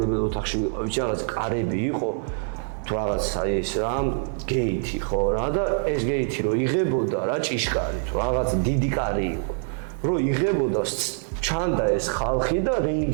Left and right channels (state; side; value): silent; left; 62 dB below the other